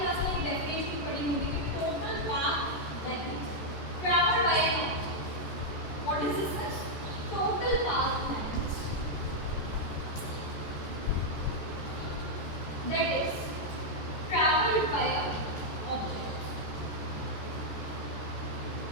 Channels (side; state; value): right; late; 14 ms